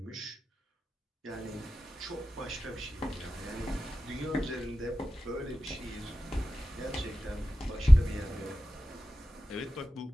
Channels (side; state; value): both; normal; correlation 0.94